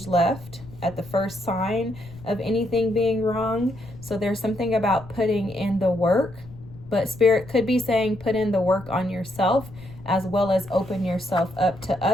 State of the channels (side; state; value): left; noise; rumble, 18 dB below the sound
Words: left at the first sign of anything being wrong. So there's something about putting in the work, but Spirit could be saying put in the work on yourself as well as open yourself up to